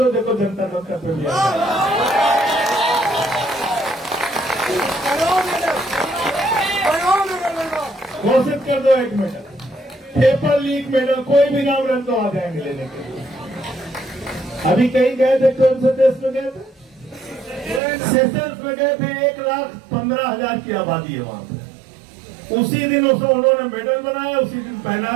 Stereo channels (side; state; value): left; drops out; at 17.8 s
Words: देखो जनता मंच पे भी घोषित कर दो 1 मेडल। पेपर लीक मेडल, कोई भी नाम रख दो, आ जाएंगे लेने के लिए। अभी कहीं गए थे, कौन से देश में गए थे? सेशल्स में गए थे। 1,15,000 की आबादी है वहां पे। उसी दिन उसको उन्होंने मेडल बनाया, उसी दिन